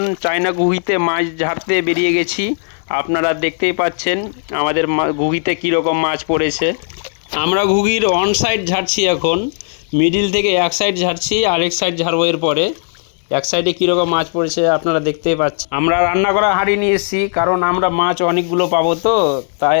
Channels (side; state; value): right; silent; digital silence